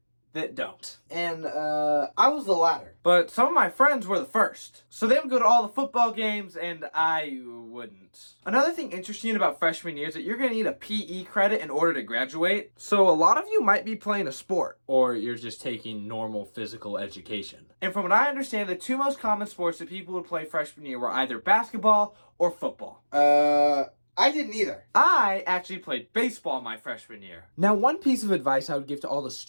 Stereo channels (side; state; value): both; inverted; correlation -1.00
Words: that don't. And I was the latter. But some of my friends were the first. So they would go to all the football games and I wouldn't. Another thing interesting about freshman year is that you're going to need a PE credit in order to graduate. So a lot of you might be playing a sport. Or you're just taking normal physical education. And from what I understand, the two most common sports that people would play freshman year were either basketball or football. I didn't either. I actually played baseball my freshman year. Now, one piece of advice I would give to all the